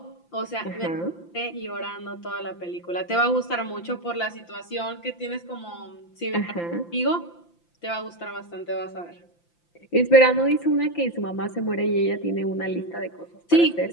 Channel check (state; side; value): late; right; 5.8 ms